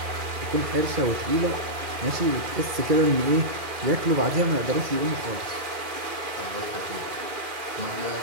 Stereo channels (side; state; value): left; late; 2.4 ms